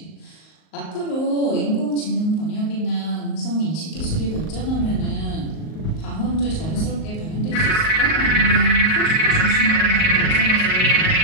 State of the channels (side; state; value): right; late; 38 ms